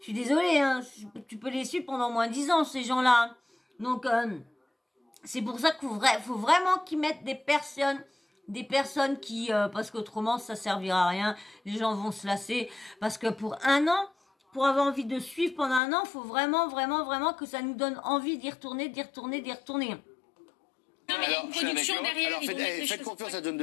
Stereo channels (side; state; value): right; drops out; at 15.8 s